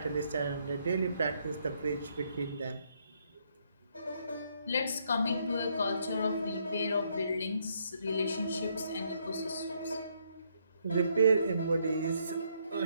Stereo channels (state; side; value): inverted; both; correlation -0.72